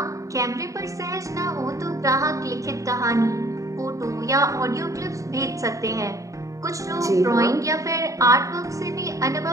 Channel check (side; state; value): left; late; 0.16 ms